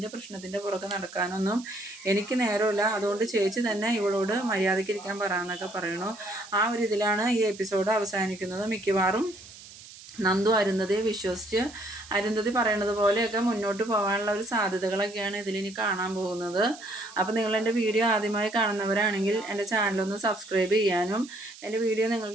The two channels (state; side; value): noise; right; hiss, 18 dB below the sound